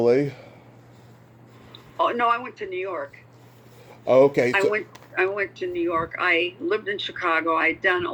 Oh, no, I went to New York. Oh, okay. I went to New York. I lived in Chicago. I'd done a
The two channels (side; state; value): both; identical; correlation 1.00